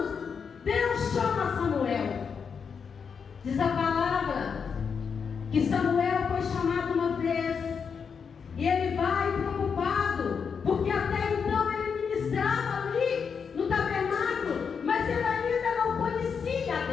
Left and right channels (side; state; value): right; quieter; 6.3 dB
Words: Deus chama Samuel. Diz a palavra que Samuel foi chamado uma vez, e ele vai preocupado, porque até então ele ministrava ali no tabernáculo, mas ele ainda não conhecia a